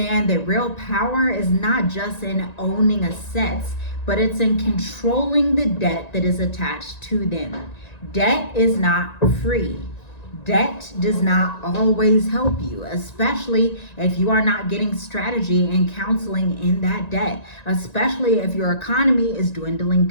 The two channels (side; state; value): right; late; 1.9 ms